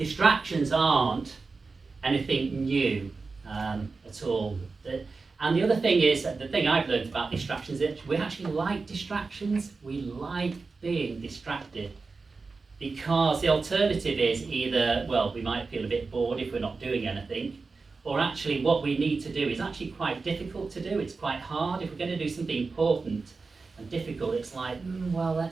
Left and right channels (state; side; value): quieter; left; 4.2 dB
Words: aren't anything new at all. And the other thing is, the thing I've learned about distractions is that we actually like distractions. We like being distracted. Because the alternative is either, well, we might feel a bit bored if we're not doing anything, or actually what we need to do is actually quite difficult to do. It's quite hard. If we're going to do something important and difficult, it's like, well,